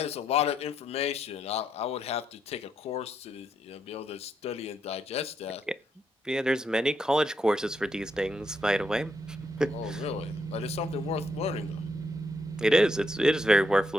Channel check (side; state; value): both; normal; correlation 0.78